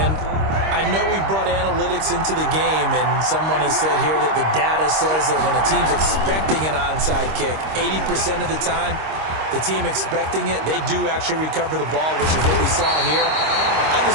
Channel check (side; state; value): left; late; 26 ms